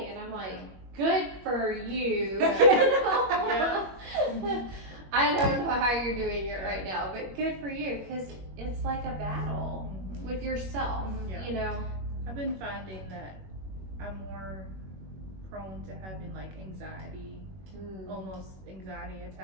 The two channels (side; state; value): left; late; 21 ms